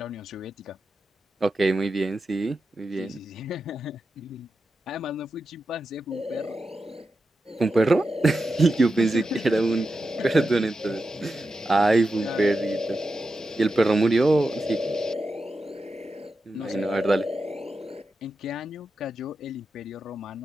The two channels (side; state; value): both; normal; correlation 0.90